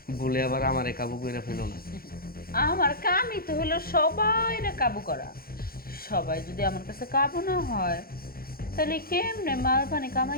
বলে আবার আমারে কাবু করে ফেলো না। আমার কামই তো হলো সবাইরে কাবু করা। সবাই যদি আমার কাছে কাবু না হয় তাহলে কেমনে মাল পানি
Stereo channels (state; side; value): late; right; 0.43 ms